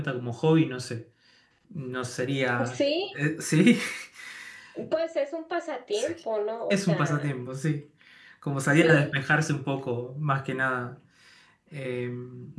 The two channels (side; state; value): both; identical; correlation 1.00